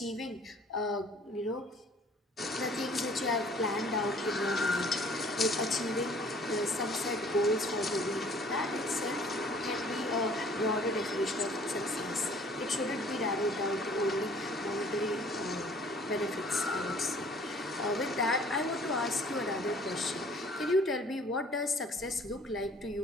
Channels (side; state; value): both; normal; correlation 0.54